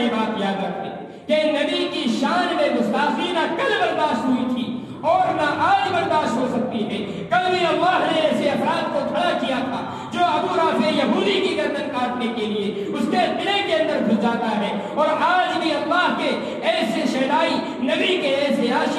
بات یاد رکھے کہ نبی کی شان میں گستاخی نہ کل برداشت ہوئی تھی اور نہ آج برداشت ہو سکتی ہے۔ کل بھی اللہ نے ایسے افراد کو کھڑا کیا تھا جو ابو رافع یہودی کی گردن کاٹنے کے لیے اس کے قلعے کے اندر گھس جاتا ہے، اور آج بھی اللہ کے ایسے شہدائی، نبی کے ایسے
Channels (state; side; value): identical; both; correlation 1.00